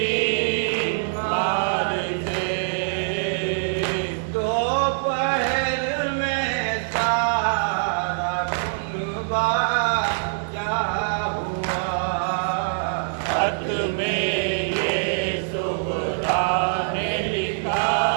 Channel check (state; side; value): silent; left; digital silence